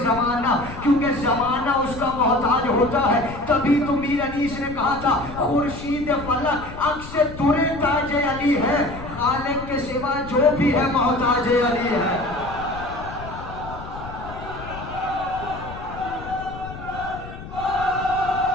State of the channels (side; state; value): left; noise; rumble, 12 dB below the sound